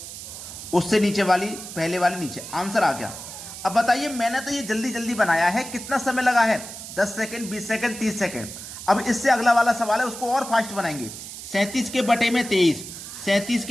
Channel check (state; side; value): noise; right; hiss, 11 dB below the sound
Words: उससे नीचे वाली पहले वाली नीचे। आंसर आ गया। अब बताइए, मैंने तो ये जल्दी जल्दी बनाया है, कितना समय लगा है? 10 सेकंड, 20 सेकंड, 30 सेकंड। अब इससे अगला वाला सवाल है, उसको और फास्ट बनाएंगे। 37 के बटे में 23, 37